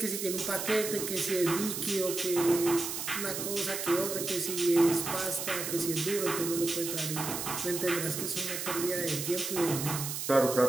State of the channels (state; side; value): noise; right; hiss, 4 dB below the sound